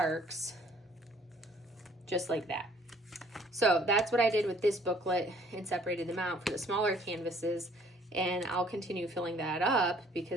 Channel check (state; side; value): normal; both; correlation 0.58